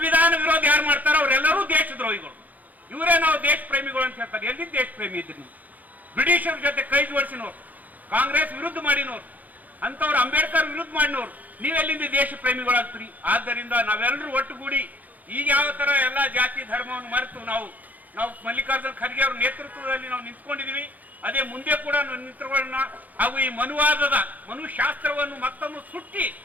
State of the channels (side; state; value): left; late; 0.080 ms